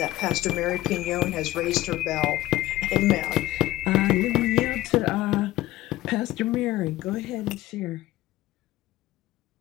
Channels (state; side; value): quieter; right; 16.5 dB